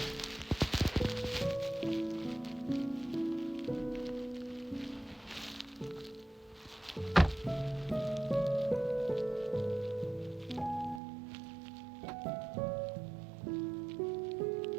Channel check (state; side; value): drops out; left; at 11.0 s